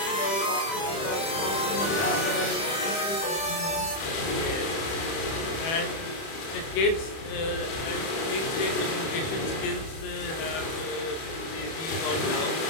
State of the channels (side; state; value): right; late; 30 ms